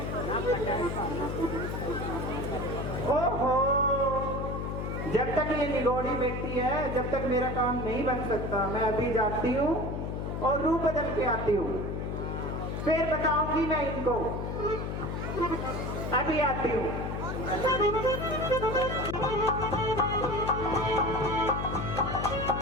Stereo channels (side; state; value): left; noise; hum, 3 dB below the sound